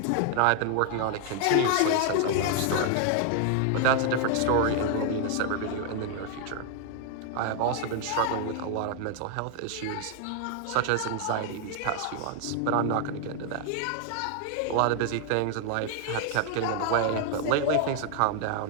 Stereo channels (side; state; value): both; different; correlation 0.00